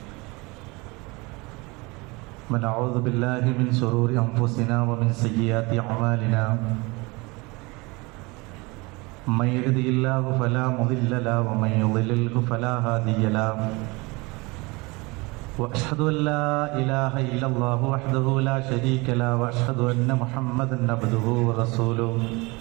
ونعوذ بالله من شرور أنفسنا ومن سيئات أعمالنا من يهده الله فلا مضل له ومن يضلل فلا هادي له وأشهد أن لا إله إلا الله وحده لا شريك له وأشهد أن محمدا عبده ورسوله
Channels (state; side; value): quieter; left; 25.4 dB